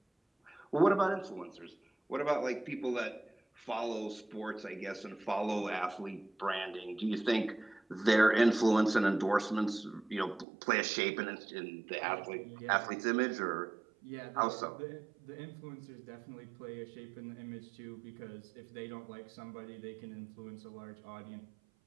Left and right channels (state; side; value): drops out; left; at 10.5 s